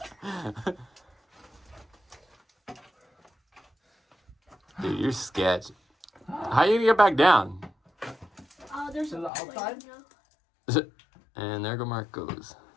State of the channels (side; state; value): right; drops out; at 9.3 s